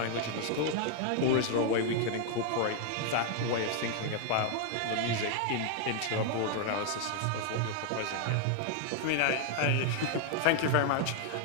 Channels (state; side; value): different; both; correlation 0.00